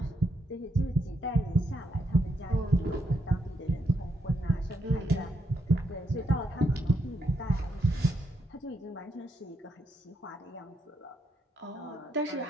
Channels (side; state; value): both; normal; correlation 0.79